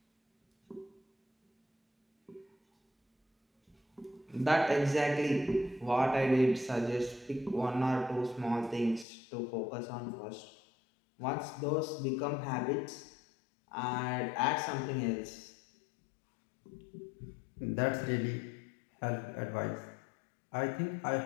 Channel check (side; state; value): right; drops out; at 9.1 s